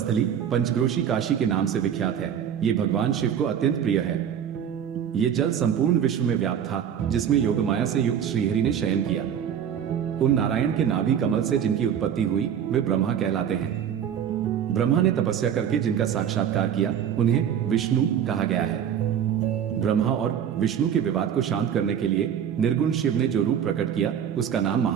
पंचक्रोशी काशी के नाम से विख्यात है। ये भगवान शिव को अत्यंत प्रिय है। ये जल संपूर्ण विश्व में व्याप्त था, जिसमें योगमाया से युक्त श्रीहरि ने शयन किया। उन नारायण के नाभि कमल से जिनकी उत्पत्ति हुई, वे ब्रह्मा कहलाते हैं। ब्रह्मा ने तपस्या करके जिनका साक्षात्कार किया, उन्हें विष्णु कहा गया है। ब्रह्मा और विष्णु के विवाद को शांत करने के लिए निर्गुण शिव ने जो रूप प्रकट किया, उसका नाम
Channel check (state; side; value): quieter; left; 8.8 dB